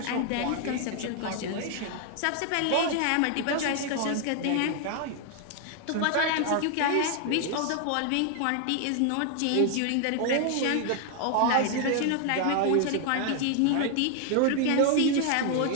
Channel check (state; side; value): different; both; correlation 0.00